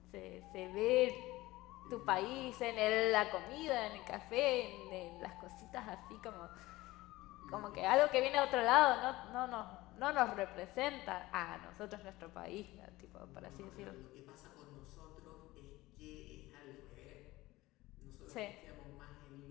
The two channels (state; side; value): quieter; right; 18.7 dB